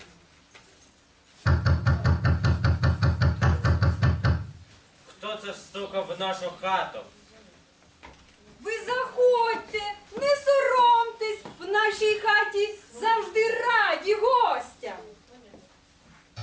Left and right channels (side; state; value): both; identical; correlation 1.00